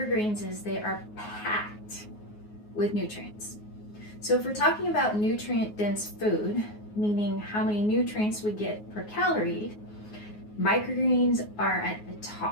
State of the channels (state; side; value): late; right; 9.5 ms